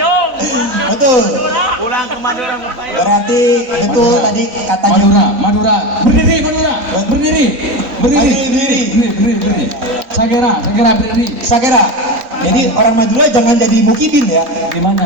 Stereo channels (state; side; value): late; left; 4.0 ms